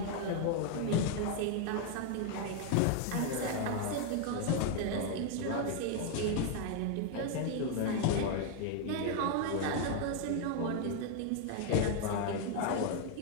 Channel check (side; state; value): both; different; correlation 0.00